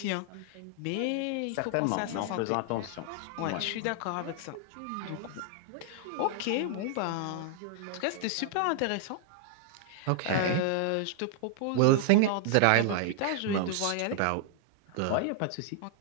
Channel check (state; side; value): different; both; correlation 0.00